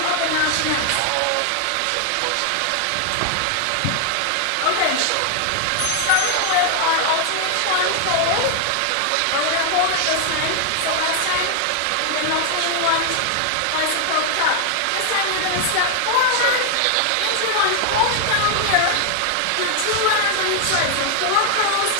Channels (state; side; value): different; both; correlation 0.00